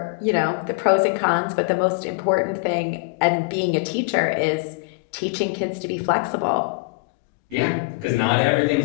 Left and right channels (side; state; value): right; quieter; 28.4 dB